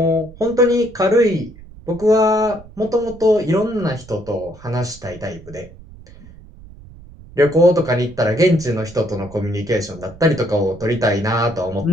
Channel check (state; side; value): noise; right; rumble, 20 dB below the sound